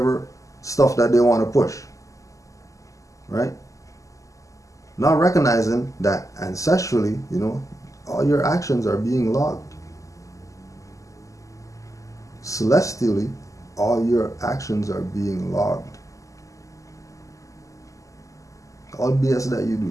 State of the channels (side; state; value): right; late; 0.16 ms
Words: stuff that they want to push. Right? Not recognizing that ancestrally, all your actions are being logged. Celestially, all your actions are being logged. All BS that you